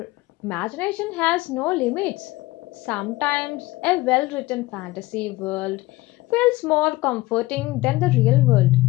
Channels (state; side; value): quieter; right; 19.3 dB